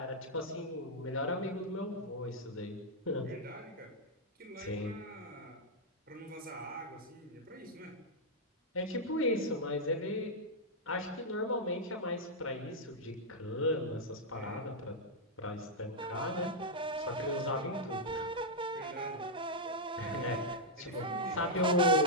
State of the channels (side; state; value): both; normal; correlation -0.05